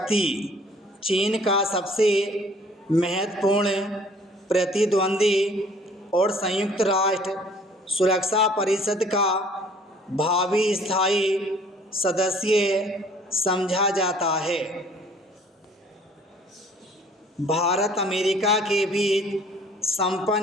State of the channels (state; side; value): normal; both; correlation 0.55